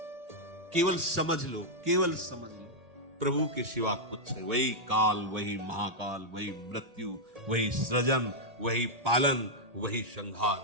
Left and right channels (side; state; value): left; late; 1.8 ms